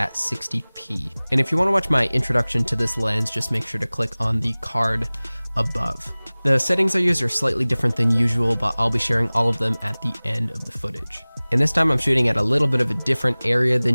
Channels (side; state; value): both; inverted; correlation -1.00